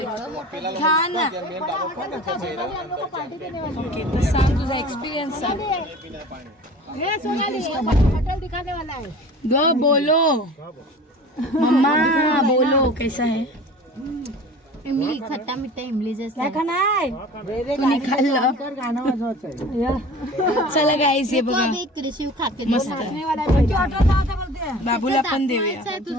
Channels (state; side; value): normal; both; correlation 0.40